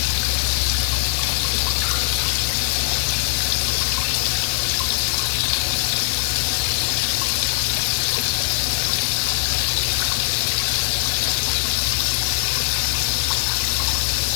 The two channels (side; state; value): right; silent; 59 dB below the other